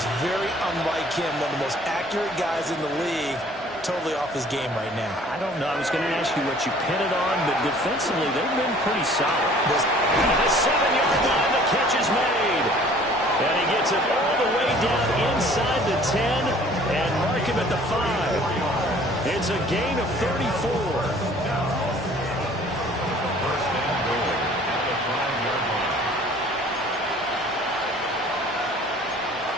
very unlike him, one of the most accurate guys in the league. Totally off his game right now. I don't know. I was going to ask you what you pin it on, but defensively, they've been pretty solid. The 7-yard line, the catch is made. And he gets it all the way down inside the 10 and mark him at the 5. It's a gain of 34.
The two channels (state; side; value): normal; both; correlation 0.53